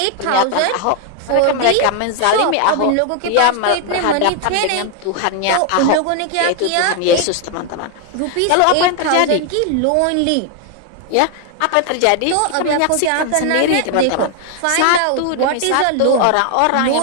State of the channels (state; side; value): different; both; correlation 0.00